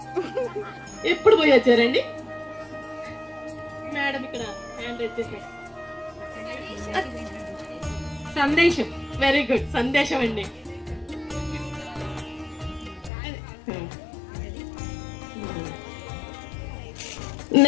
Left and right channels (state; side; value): drops out; right; at 13.1 s